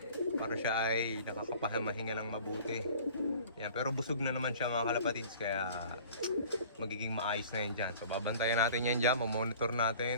para siya ay nakakapahamahinga ng mabuti. Ayan. Pero busog na naman siya mga kalapatids, kaya magiging maayos na yan dyan. So babantayan natin yan dyan, mamonitor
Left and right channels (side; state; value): both; inverted; correlation -0.47